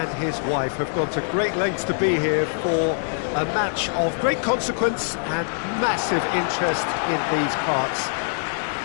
his wife have gone to great lengths to be here for a match of great consequence and massive interest in these parts.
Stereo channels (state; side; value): silent; right; digital silence